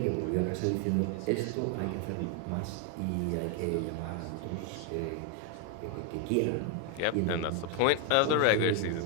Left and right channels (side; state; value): both; different; correlation 0.01